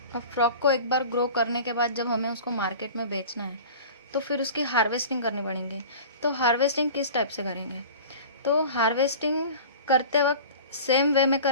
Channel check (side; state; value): both; inverted; correlation -0.38